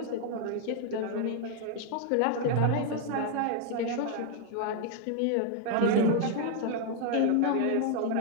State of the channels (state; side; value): different; both; correlation 0.00